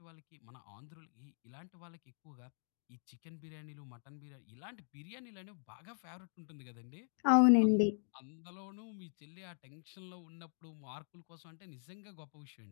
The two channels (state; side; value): silent; right; digital silence